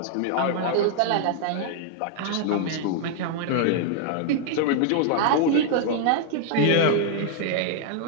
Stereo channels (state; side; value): different; both; correlation 0.00